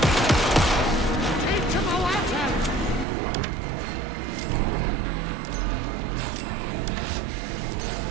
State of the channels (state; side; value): drops out; left; at 3.1 s